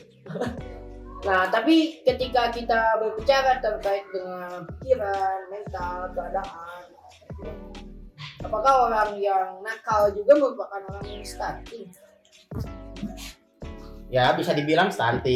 Nah, tapi ketika kita berbicara terkait dengan pikiran, mental, keadaan, apakah orang yang nakal juga merupakan orang yang stunting? Ya bisa dibilang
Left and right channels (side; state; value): both; identical; correlation 1.00